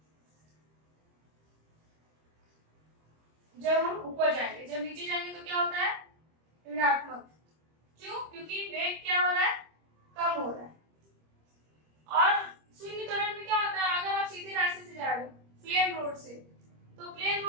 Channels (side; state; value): left; late; 25 ms